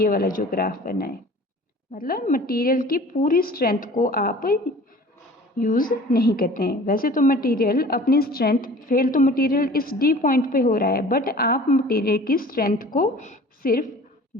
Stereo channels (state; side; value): normal; both; correlation 0.45